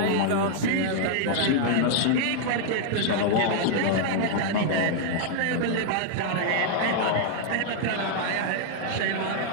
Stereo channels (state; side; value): different; both; correlation -0.01